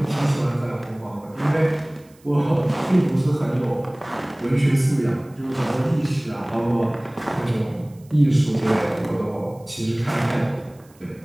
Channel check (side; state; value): right; noise; hiss, 30 dB below the sound